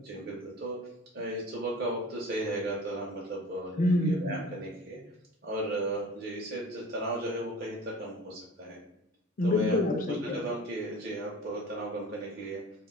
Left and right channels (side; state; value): both; normal; correlation 0.41